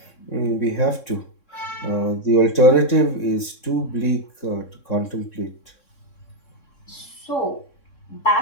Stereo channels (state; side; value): late; right; 3.6 ms